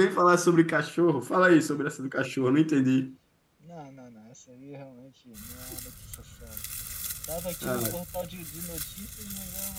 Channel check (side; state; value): both; identical; correlation 1.00